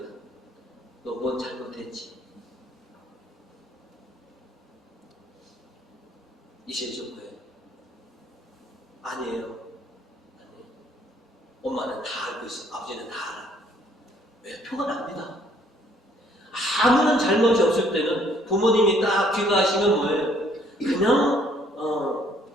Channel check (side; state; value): both; normal; correlation 0.63